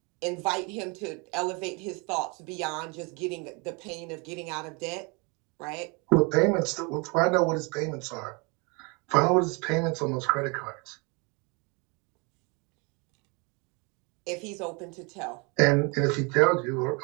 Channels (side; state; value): left; quieter; 30.7 dB